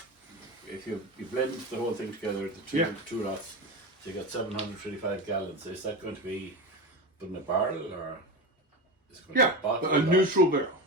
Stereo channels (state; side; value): normal; both; correlation 0.22